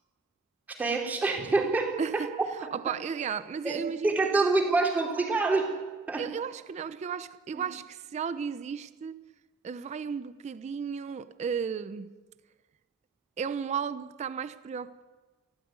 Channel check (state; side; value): quieter; left; 3.8 dB